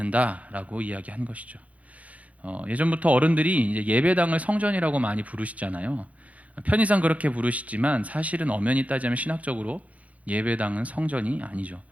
이야기한 것이죠. 예전부터 어른들이 이제 예배당을 성전이라고 많이 부르시잖아요. 편의상 그렇게 부르시지만 사실은 엄연히 따지면 신학적으로 예배당은 성전이 아니죠.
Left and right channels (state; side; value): late; left; 0.068 ms